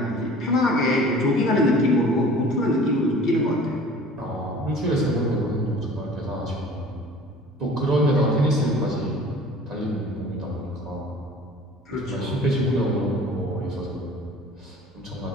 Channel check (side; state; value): both; normal; correlation 0.46